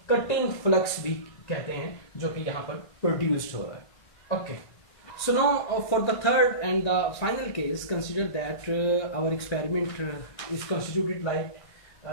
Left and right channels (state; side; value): late; right; 1.6 ms